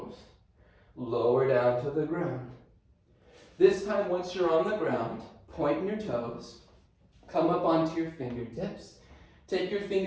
Lower down to the ground. This time, once you're on the ground, point your toes. Come up onto your fingertips. Take your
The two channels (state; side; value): identical; both; correlation 1.00